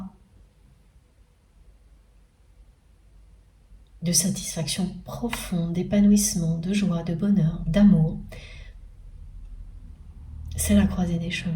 de satisfaction profonde, d'épanouissement, de joie, de bonheur, d'amour, c'est la croisée des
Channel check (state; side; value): identical; both; correlation 1.00